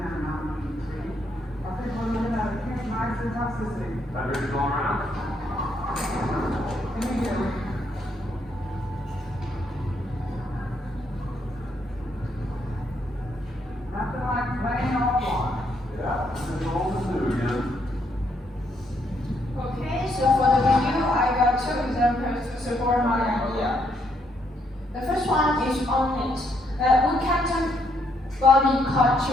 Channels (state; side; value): normal; both; correlation 0.74